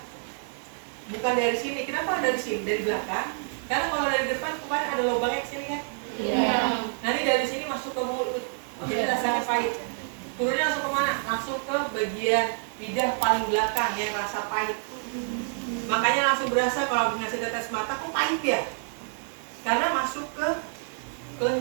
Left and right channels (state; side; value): silent; left; 60 dB below the other